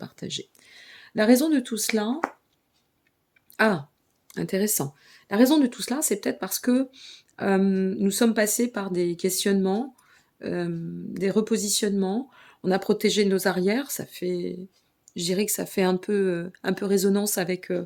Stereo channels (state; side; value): identical; both; correlation 1.00